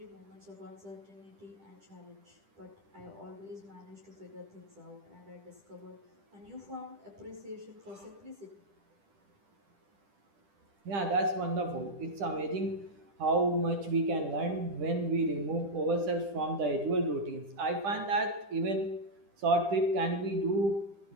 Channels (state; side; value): late; left; 10 ms